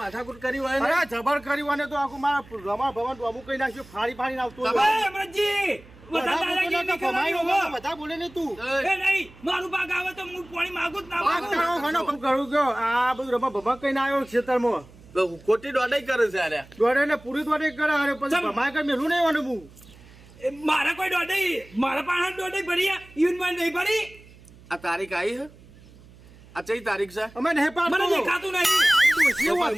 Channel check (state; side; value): noise; right; hum, 23 dB below the sound